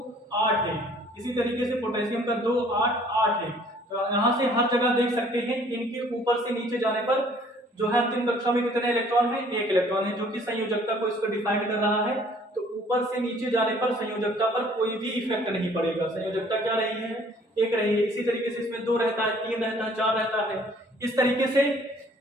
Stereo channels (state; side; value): normal; both; correlation 0.57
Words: 8 है, इसी तरीके से पोटेशियम का 2, 8, 8 है। तो यहाँ से हर जगह देख सकते हैं इनके ऊपर से नीचे जाने पर जो है अंतिम कक्षा में कितने इलेक्ट्रॉन है, एक इलेक्ट्रॉन है, जो कि संयोजकता को इसको डिफाइन कर रहा है। तो ऊपर से नीचे जाने पर संयोजकता पर कोई भी इफेक्ट नहीं पड़ेगा, संयोजकता क्या रही है, एक रही है। इसी तरीके से इसमें 2 रहता है, 3 रहता है, 4 रहता है। इस तरीके से